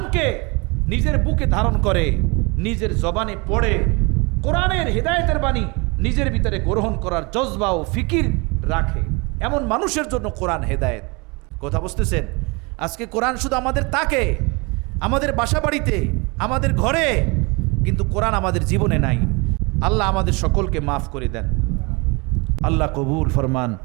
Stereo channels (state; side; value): quieter; left; 28.3 dB